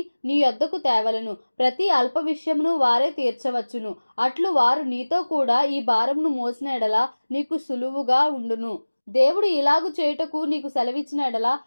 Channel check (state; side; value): inverted; both; correlation -1.00